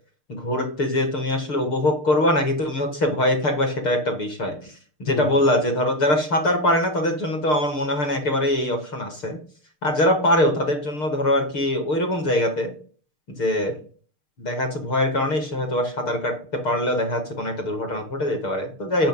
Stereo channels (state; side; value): late; right; 6.6 ms